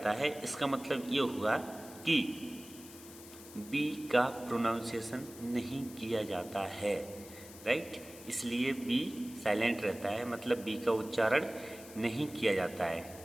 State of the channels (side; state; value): left; noise; hiss, 17 dB below the sound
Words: है। इसका मतलब ये हुआ कि बी का प्रोनाउंसिएशन नहीं किया जाता है, राइट। इसलिए बी साइलेंट रहता है, मतलब बी का उच्चारण नहीं किया जाता है,